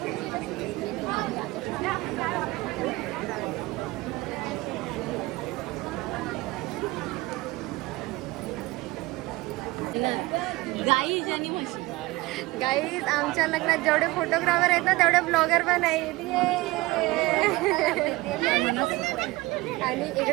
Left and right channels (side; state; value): left; quieter; 20.7 dB